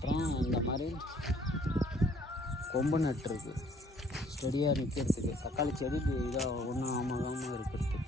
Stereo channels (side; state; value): both; normal; correlation 0.60